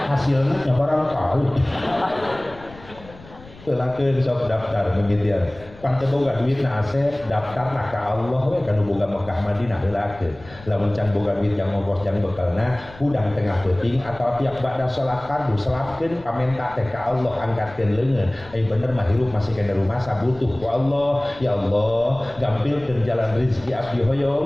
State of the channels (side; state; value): left; noise; rumble, 21 dB below the sound